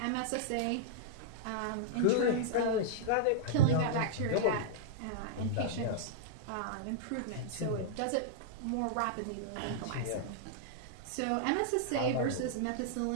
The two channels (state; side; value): different; both; correlation -0.02